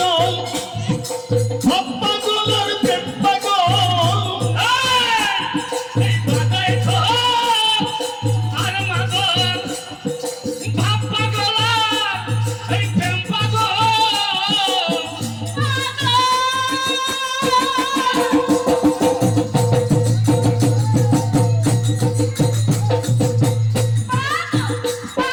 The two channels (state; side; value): identical; both; correlation 1.00